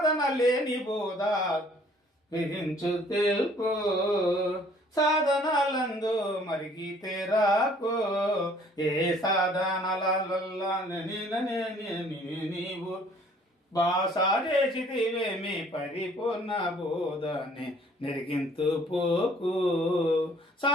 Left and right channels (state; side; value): normal; both; correlation 0.57